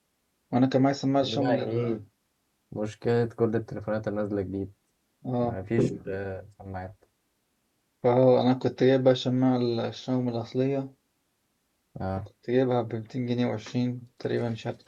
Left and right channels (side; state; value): both; identical; correlation 1.00